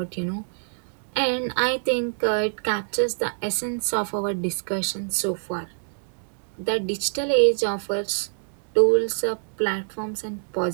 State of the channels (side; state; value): left; silent; digital silence